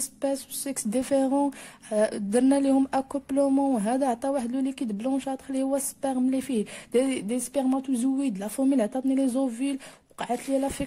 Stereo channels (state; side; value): identical; both; correlation 1.00